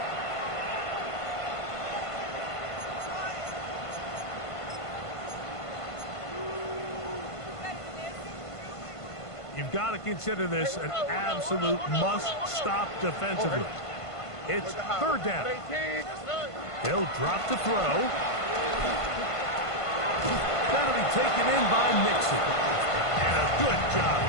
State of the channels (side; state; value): right; late; 1.5 ms